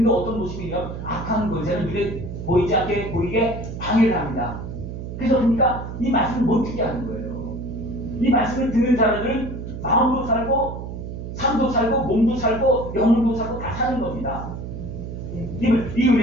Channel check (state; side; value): noise; right; hum, 8 dB below the sound